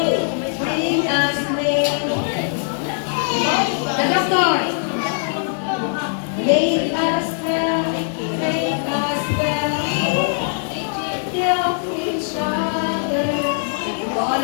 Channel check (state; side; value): silent; right; 61 dB below the other